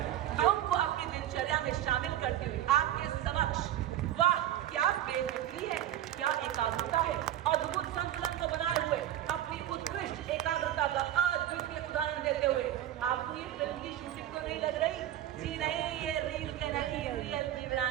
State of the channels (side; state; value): left; quieter; 12.2 dB